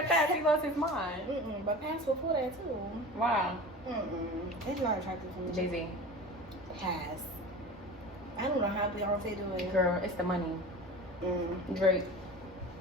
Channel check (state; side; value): normal; both; correlation 0.34